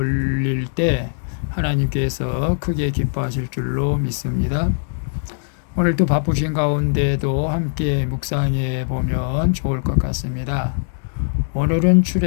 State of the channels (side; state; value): right; silent; digital silence